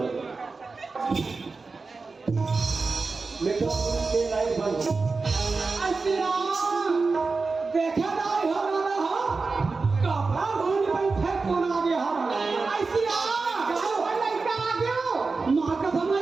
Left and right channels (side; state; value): left; quieter; 4.1 dB